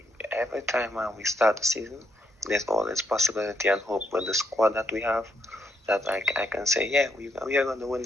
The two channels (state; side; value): normal; both; correlation 0.76